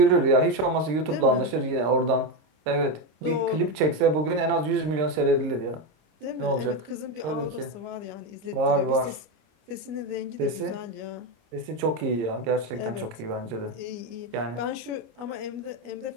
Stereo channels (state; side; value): late; left; 26 ms